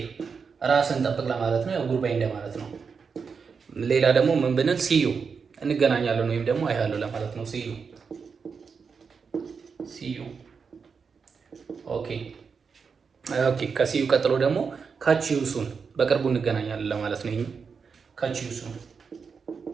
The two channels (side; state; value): left; quieter; 5.6 dB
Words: ራስን ጠብቅ ለማለት ነው። ያው ጉድባይ እንደማለት ነው። ሌላ ደግሞ ምን ብንል ሲዩ እንገናኛለን ወይም ደግሞ አይሃለሁ ለማለት ነው። ሲዩ ሲዩ። ኦኬ ኦኬ። ከሲዩ ቀጥሎ ደግሞ ካች ዩ ሱን በቅርቡ እንገናኛለን ለማለት ነው። ይሄ ካች ዩ ሱን፣